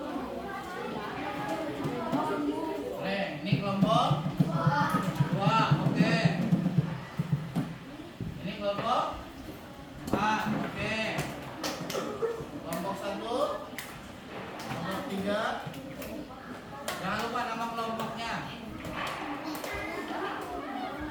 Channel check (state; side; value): identical; both; correlation 1.00